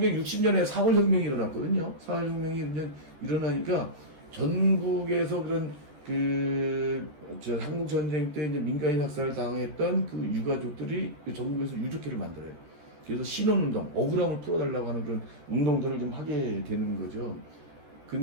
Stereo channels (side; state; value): left; late; 14 ms